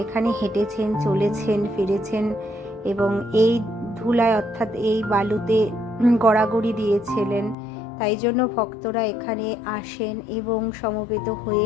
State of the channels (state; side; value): drops out; right; at 7.6 s